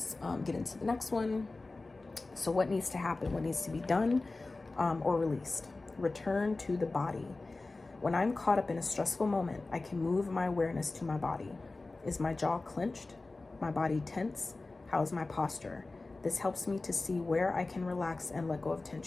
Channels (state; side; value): quieter; right; 3.4 dB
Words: get into the next one. So what needs to happen? What needs to be done or released? Return to the body. When I'm caught up in a stressful moment, I can move my awareness to my body. Is my jaw clenched? My body tense? How is my posture? This helps me to see where I can relax and let go of